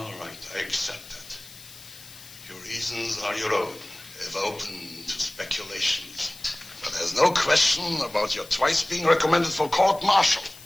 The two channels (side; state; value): left; noise; hiss, 18 dB below the sound